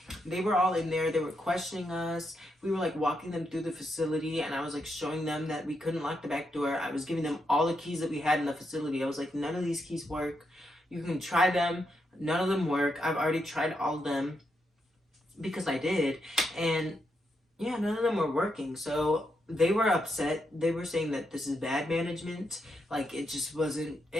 they were all in there. They were questioning us. We were like walking them through the facility, and I was like showing them that we couldn't lock the back door. I was giving them all the keys that we had in the facility. I was like, none of these keys work. You can try them. None of them work. I've already tried all of them because I did. And yeah, none of them were working. So they were upset. They were saying that this is bad management. Like, it just wasn't,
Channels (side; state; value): both; normal; correlation 0.82